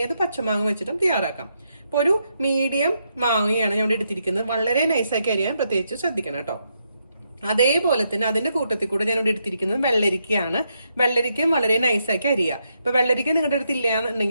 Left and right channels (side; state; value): both; inverted; correlation -0.80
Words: ഏത് പച്ചമാങ്ങ വെച്ചിട്ടും തയ്യാറാക്കാം. അപ്പൊ ഒരു മീഡിയം മാങ്ങയാണ് ഞാൻ ഇവിടെ എടുത്തിരിക്കുന്നത്. വളരെ നൈസാക്കി അരിയാൻ പ്രത്യേകിച്ച് ശ്രദ്ധിക്കണം കേട്ടോ. അതേപോലെ തന്നെ അതിന്റെ കൂട്ടത്തിൽ കൂടെ ഞാൻ ഇവിടെ എടുത്തിരിക്കുന്നത് വെള്ളരിക്കയാണ്. വെള്ളരിക്കയും വളരെ നൈസാക്കി അരിയുക. ഇപ്പൊ വെള്ളരിക്ക നിങ്ങളുടെ അടുത്ത് ഇല്ല